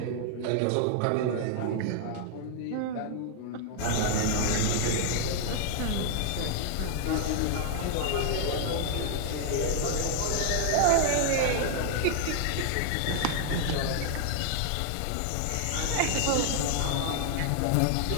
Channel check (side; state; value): both; different; correlation 0.00